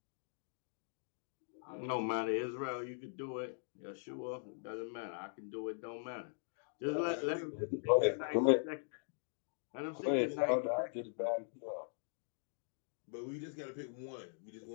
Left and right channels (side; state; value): right; silent; digital silence